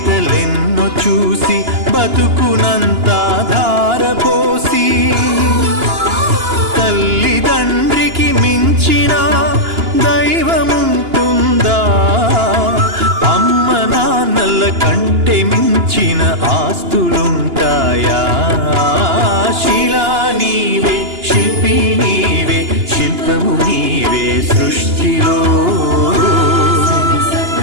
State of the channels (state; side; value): late; left; 2.9 ms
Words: చూసి బతుకునంతా ధారపోసి. తల్లిదండ్రికి మించిన దైవముంటుందా, అమ్మ నాన్నల కంటే మించిన ఆస్తులుంటాయా. శిలా నీవే, శిల్పి నీవే, శిల్పము నీవే సృష్టిలో.